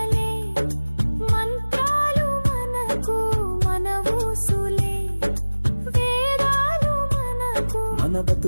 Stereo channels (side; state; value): both; inverted; correlation -1.00